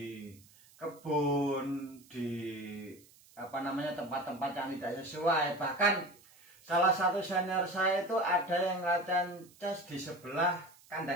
kebun, di tempat-tempat yang tidak sesuai. Bahkan salah satu senior saya itu ada yang latihan chest di sebelah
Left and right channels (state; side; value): noise; right; hiss, 26 dB below the sound